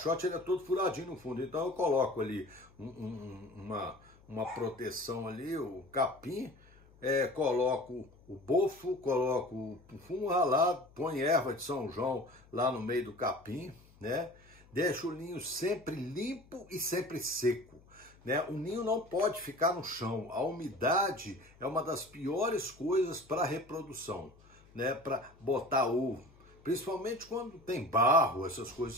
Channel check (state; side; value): noise; left; hum, 26 dB below the sound